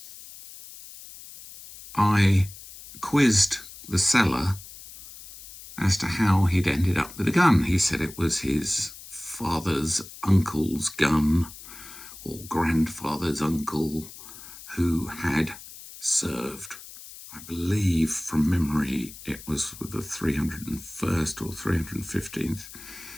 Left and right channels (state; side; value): noise; left; hiss, 16 dB below the sound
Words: I quizzed the seller as to how he'd ended up with a gun. He said it was his father's uncle's gun, or grandfather's uncle, who had served, I believe from memory, it was with the 301st or 315th